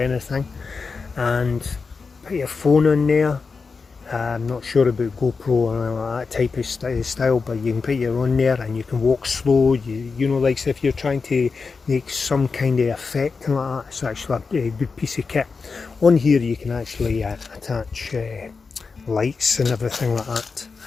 and put your phone on there. I'm not sure about GoPro or that type of style, but you can put your on there and you can walk slow. You know, like if you're trying to make some kind of effect like that, it's actually a good piece of kit. On here you can actually attach lights and everything like that.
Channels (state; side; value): quieter; right; 4.8 dB